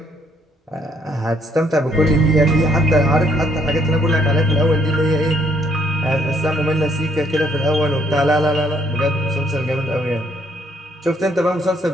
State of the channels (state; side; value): normal; both; correlation 0.68